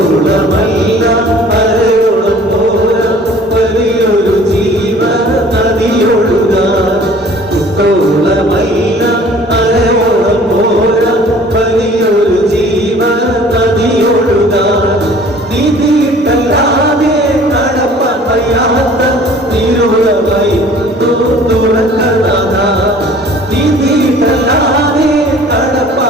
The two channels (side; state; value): both; normal; correlation 0.50